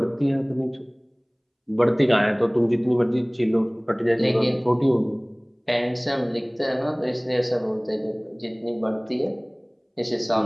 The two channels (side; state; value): both; identical; correlation 1.00